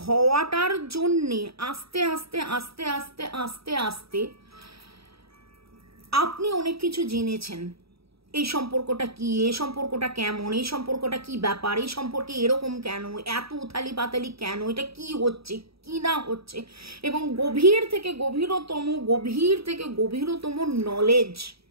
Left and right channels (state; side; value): late; left; 0.77 ms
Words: হওয়াটার জন্যে আস্তে আস্তে আস্তে আস্তে আস্তে আস্তে আপনি অনেক কিছু জেনেছেন। এই সম্পর্কটা কি, এই সম্পর্কটা কেমন, এই সম্পর্কটা কি ব্যাপার, এই সম্পর্কে এরকম কেন, এত উথালি পাতালি কেন, এটা কি হচ্ছে কি না হচ্ছে, এবং গভীর থেকে গভীরতম নলেজ,